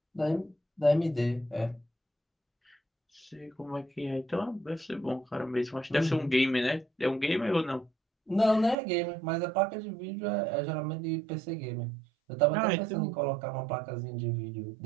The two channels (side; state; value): left; drops out; at 8.8 s